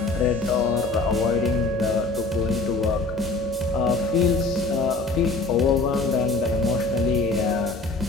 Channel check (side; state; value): right; quieter; 3.5 dB